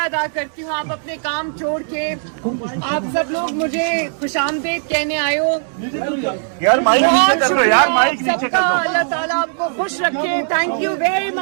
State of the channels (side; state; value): left; silent; digital silence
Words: ادا کرتی ہوں. آپ اپنے کام چھوڑ کے آپ سب لوگ مجھے خوش آمدید کہنے آئے ہو. یار مائک نیچے کر دو یار, مائک سب نیچے کا کر دو. اللہ تعالیٰ آپ کو خوش رکھے. Thank you very